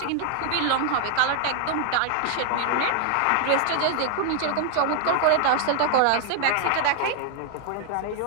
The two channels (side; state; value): both; different; correlation 0.00